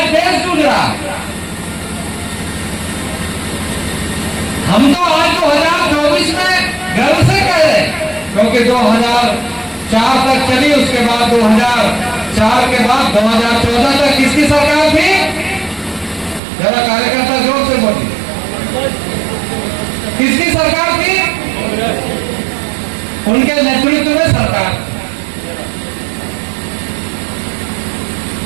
देश जूझ रहा है। हम तो आज 2024 में गर्व से कह रहे हैं क्योंकि 2004 तक चली, उसके बाद 2004 के बाद 2014 तक किसकी सरकार थी? जरा कार्यकर्ता जोर से बोलिए, किसकी सरकार थी? उनके नेतृत्व में सरकार।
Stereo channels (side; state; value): left; drops out; at 16.4 s